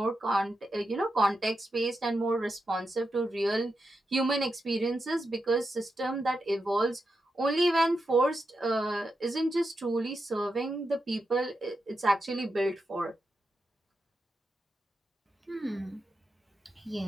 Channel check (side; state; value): both; normal; correlation 0.87